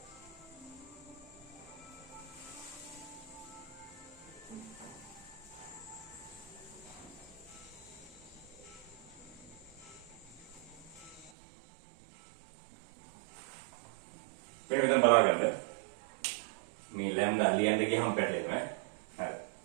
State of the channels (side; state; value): left; drops out; at 11.3 s